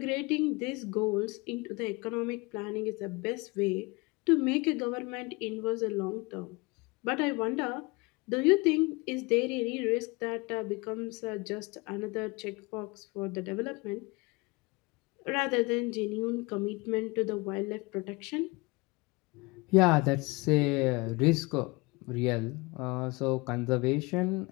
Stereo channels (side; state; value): right; quieter; 25.5 dB